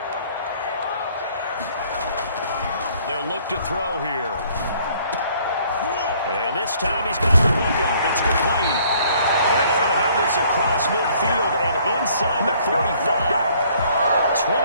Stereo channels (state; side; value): inverted; both; correlation -0.60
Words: They'll look to throw here. And this time he's got the hook up. It's complete. And they're going to have this across midfield and inside the 45.